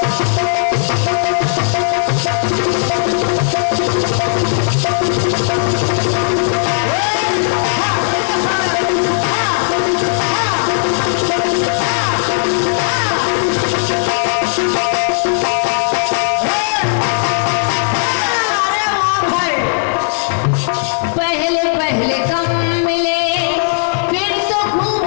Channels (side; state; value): right; silent; 69 dB below the other